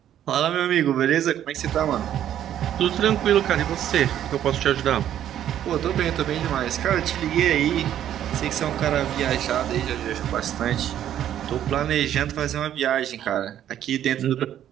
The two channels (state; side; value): quieter; left; 10.9 dB